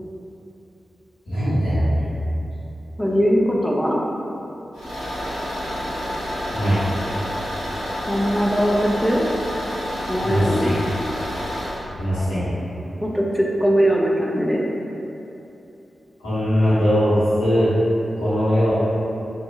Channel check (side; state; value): both; normal; correlation 0.93